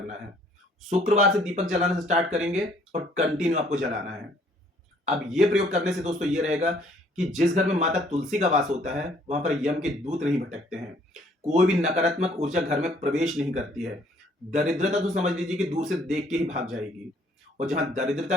है। शुक्रवार से दीपक जलाना से स्टार्ट करेंगे और कंटिन्यू आपको जलाना है। अब ये प्रयोग करने से दोस्तों ये रहेगा कि जिस घर में माता तुलसी का वास होता है वहां पर यम के दूत नहीं भटकते हैं, कोई भी नकारात्मक ऊर्जा घर में प्रवेश नहीं करती है। दरिद्रता तो समझ लीजिए कि दूर से देख के ही भाग जाएगी। और जहां दरिद्रता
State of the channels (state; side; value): normal; both; correlation 0.62